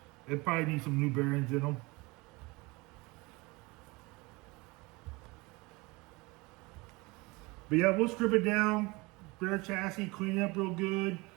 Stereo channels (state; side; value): quieter; left; 24.6 dB